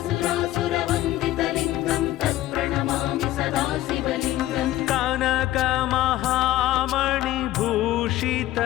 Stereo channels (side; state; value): right; quieter; 15.0 dB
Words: तत्प्रणमामि सदा शिवलिङ्गम्